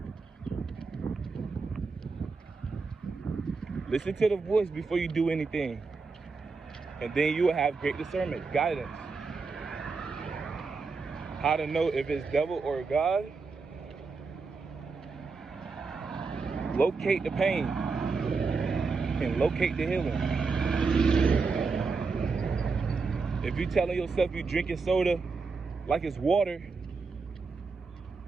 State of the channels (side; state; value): left; quieter; 4.5 dB